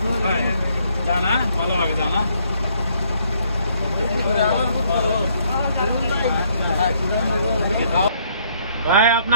জানা ভালোভাবে জানা ভাই,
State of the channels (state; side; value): inverted; both; correlation -0.67